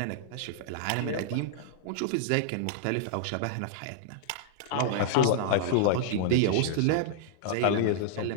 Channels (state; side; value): different; both; correlation -0.01